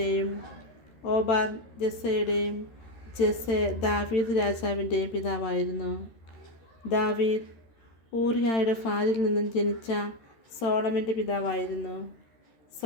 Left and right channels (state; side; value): late; right; 13 ms